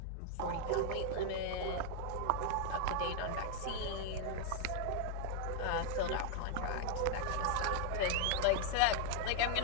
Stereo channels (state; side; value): different; both; correlation 0.00